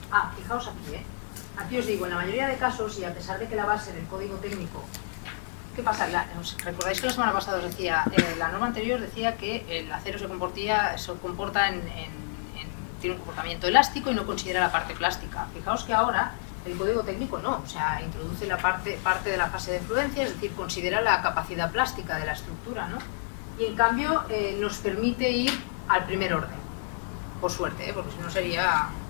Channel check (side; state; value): right; silent; digital silence